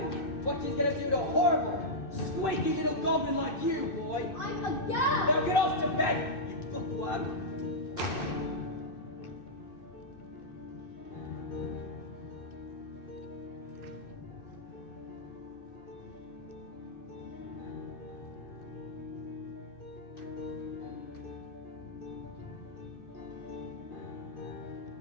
what she's gonna do to a horrible, squeaky little goblin like you, boy. I'm a girl. Now get off to bed, you bookworm.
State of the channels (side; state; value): right; late; 2.6 ms